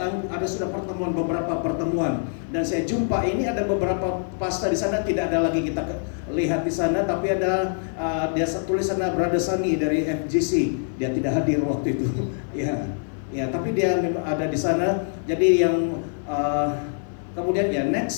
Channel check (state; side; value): silent; right; 62 dB below the other